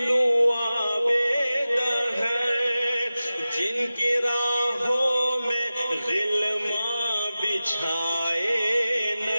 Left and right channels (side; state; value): both; inverted; correlation -0.95